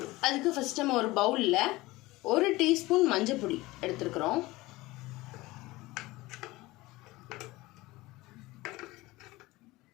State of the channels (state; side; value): quieter; right; 20.0 dB